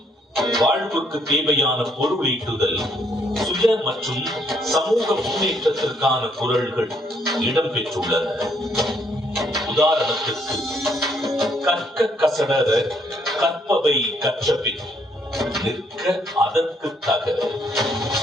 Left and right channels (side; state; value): both; normal; correlation 0.70